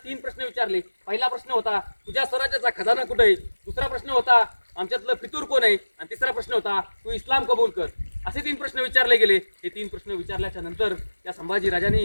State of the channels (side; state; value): both; inverted; correlation -1.00